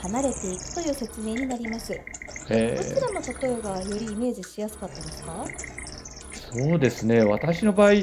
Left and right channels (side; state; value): both; identical; correlation 1.00